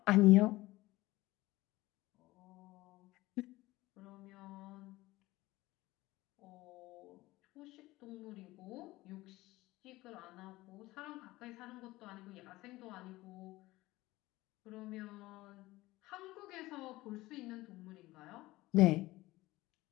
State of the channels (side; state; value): right; quieter; 18.8 dB